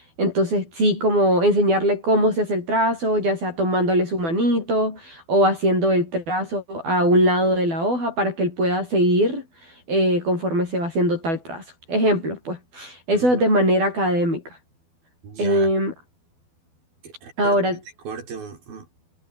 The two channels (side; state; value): left; late; 12 ms